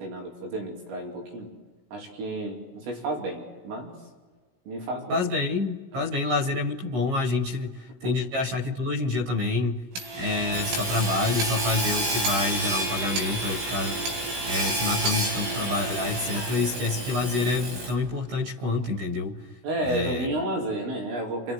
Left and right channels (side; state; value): left; late; 16 ms